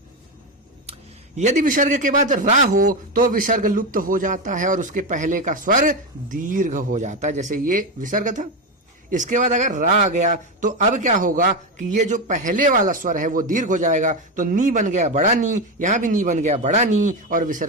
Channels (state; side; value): normal; both; correlation 0.13